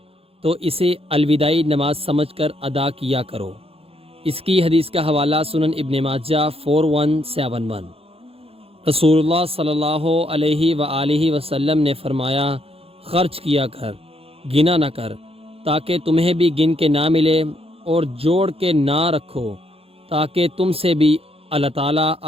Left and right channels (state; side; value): late; left; 0.28 ms